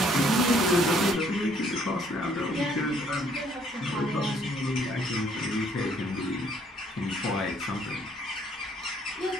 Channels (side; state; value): both; normal; correlation 0.64